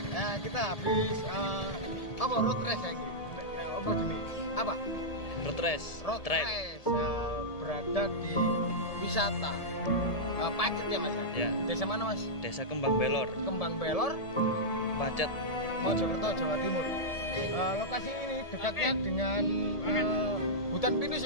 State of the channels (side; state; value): right; late; 1.7 ms